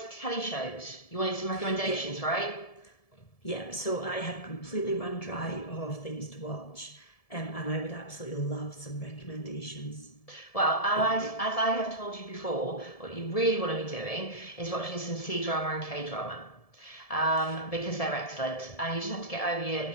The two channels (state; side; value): late; right; 1.7 ms